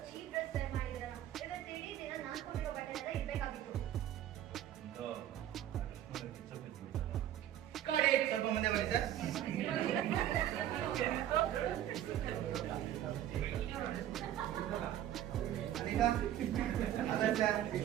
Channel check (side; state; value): left; quieter; 11.8 dB